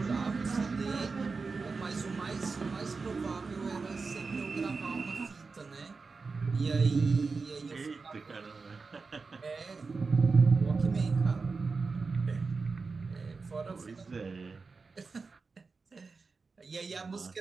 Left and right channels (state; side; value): quieter; left; 4.4 dB